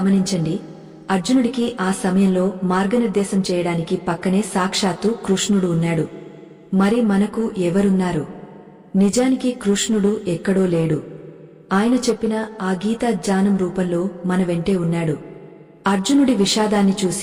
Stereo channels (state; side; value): identical; both; correlation 1.00